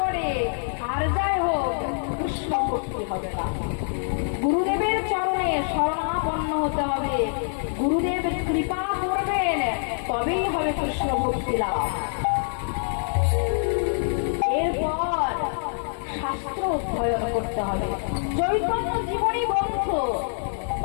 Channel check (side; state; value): right; silent; digital silence